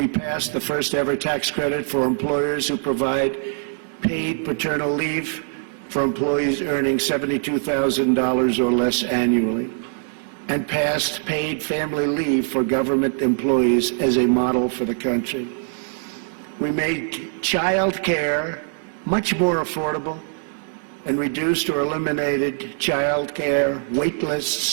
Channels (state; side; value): silent; left; 64 dB below the other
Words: passed the first ever tax credit for employers who provide paid paternal leave for employees earning $72,000 or less annually, and passed paid family leave for government employees as a model for the country. We made child care much more affordable and reduced or eliminated child care wait